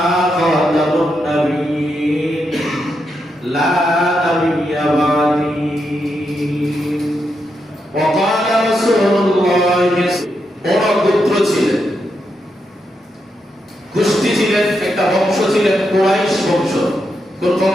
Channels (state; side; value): normal; both; correlation 0.83